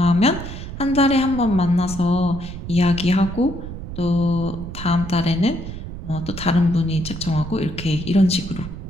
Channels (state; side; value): noise; right; rumble, 9 dB below the sound